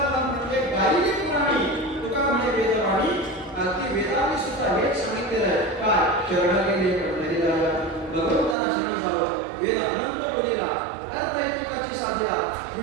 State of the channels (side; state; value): left; drops out; at 8.6 s